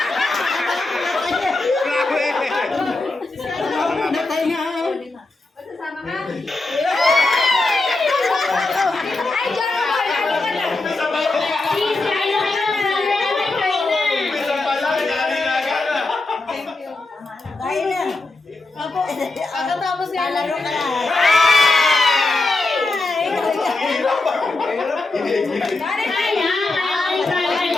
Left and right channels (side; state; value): right; quieter; 3.2 dB